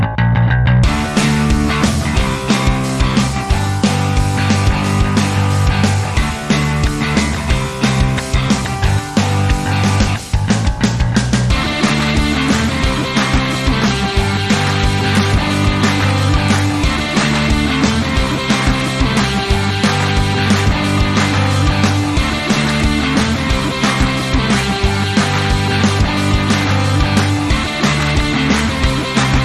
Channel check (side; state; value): both; identical; correlation 1.00